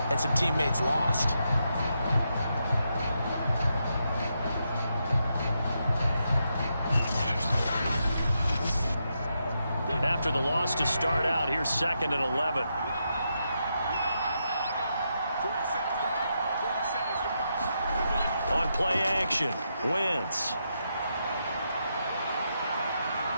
and some teammates lost. After the loss to start out, here's 2nd and 11. On play action, Wentz.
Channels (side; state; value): both; inverted; correlation -0.83